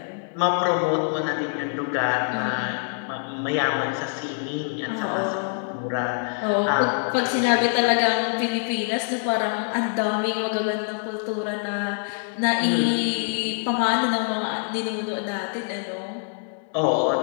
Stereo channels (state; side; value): silent; right; 62 dB below the other